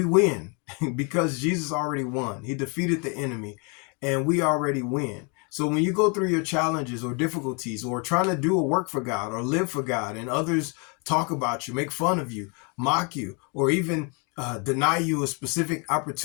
win because Jesus already won. He defeated the enemy, and we already win. So when you go through your challenges or difficulties, or trying to do a work for God or live for God, and others talk about you, make fun of you, mock you, or even deny you a specific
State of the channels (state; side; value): quieter; right; 34.1 dB